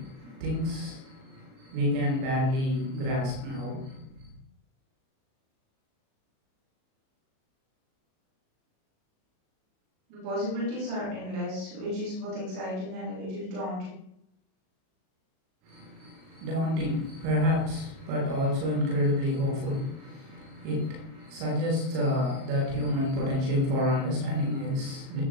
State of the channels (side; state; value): left; late; 37 ms